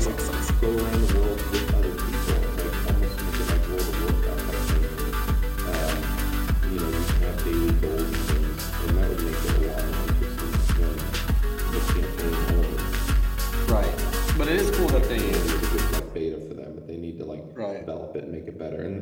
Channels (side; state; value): both; identical; correlation 1.00